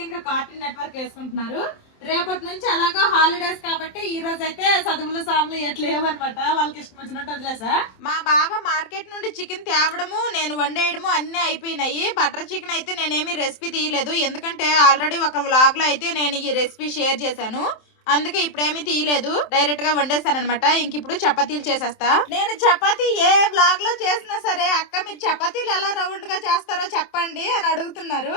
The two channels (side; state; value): right; late; 27 ms